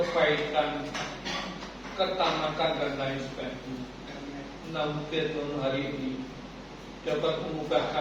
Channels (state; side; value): identical; both; correlation 1.00